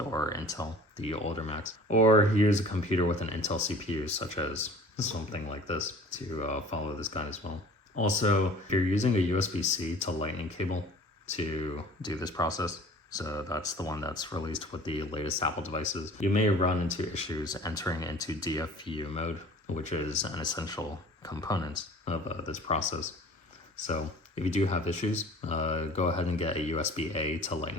Intel, the older Macs, or use a computer with an Intel CPU, such as something like this, to follow this guide as well. Also, if you're using a USB-C to Lightning cable to do this process, so that's the one that's released with the latest Apple devices, you may run into issues entering into DFU mode, which is an essential component of this process. So if you do have issues, go ahead and get a USB-A to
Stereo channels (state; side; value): normal; both; correlation 0.47